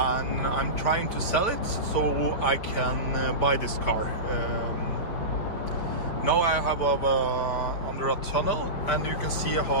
I'm trying to sell it so I can buy this car. Now I have under a tunnel, and you can see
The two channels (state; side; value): late; right; 5.0 ms